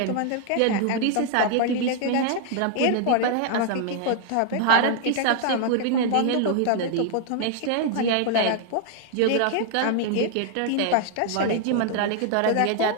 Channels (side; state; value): both; different; correlation 0.00